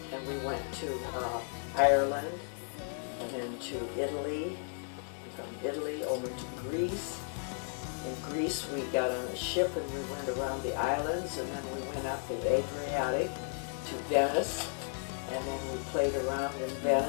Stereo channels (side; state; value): right; silent; 55 dB below the other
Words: and we went to Ireland, and then to Italy, from Italy over to Greece. In Greece, we got on a ship and we went around the islands, and then we went up the Adriatic to Venice, and then we played around in